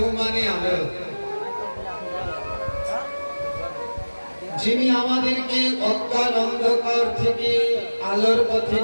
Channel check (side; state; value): both; inverted; correlation -1.00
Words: মানে আলো। যিনি আমাদেরকে অজ্ঞান অন্ধকার থেকে আলোর পথে